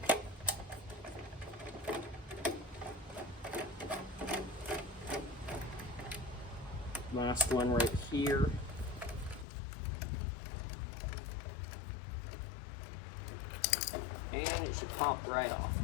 Last one right here. And it should pop right off.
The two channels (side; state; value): right; drops out; at 9.5 s